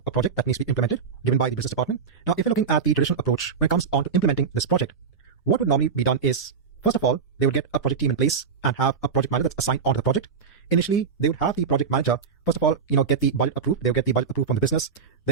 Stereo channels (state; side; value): quieter; left; 5.8 dB